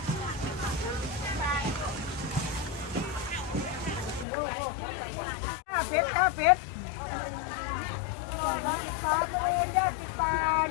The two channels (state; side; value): drops out; right; at 4.2 s